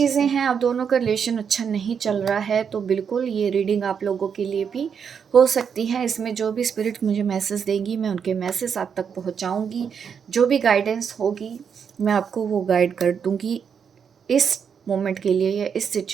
हैं, आप दोनों का रिलेशन अच्छा नहीं चल रहा है, तो बिल्कुल ये रीडिंग आप लोगों के लिए भी हो सकती है। इसमें जो भी स्पिरिट मुझे मैसेज देंगी, मैं उनके मैसेज आप तक पहुंचाऊंगी। जो भी गाइडेंस होगी मैं आपको वो गाइड कर दूंगी इस मोमेंट के लिए या इस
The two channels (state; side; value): quieter; left; 7.0 dB